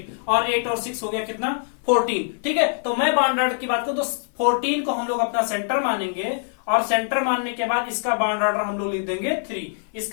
और 8 और 6 हो गया कितना 14, ठीक है। तो मैं बॉन्ड ऑर्डर की बात करूं तो 14 को हम लोग अपना सेंटर मानेंगे, और सेंटर मानने के बाद इसका बॉन्ड ऑर्डर हम लोग लिख देंगे 3।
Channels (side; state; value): right; silent; 55 dB below the other